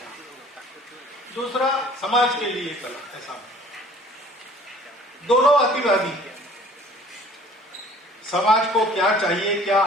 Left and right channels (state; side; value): normal; both; correlation 0.52